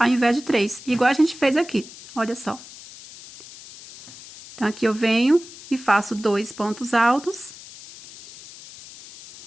invés de 3, igual a gente fez aqui, olha só. Então, aqui eu venho e faço 2 pontos altos.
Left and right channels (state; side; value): noise; left; hiss, 17 dB below the sound